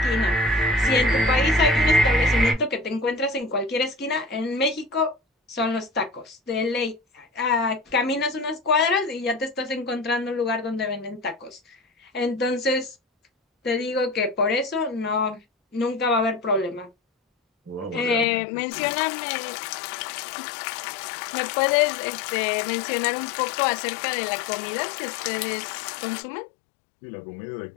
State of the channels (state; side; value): drops out; right; at 18.2 s